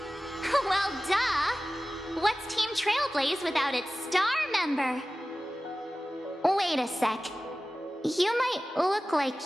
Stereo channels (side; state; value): both; normal; correlation 0.96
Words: Well, duh! What's Team Trailblaze without its star member? Wait a sec. You might look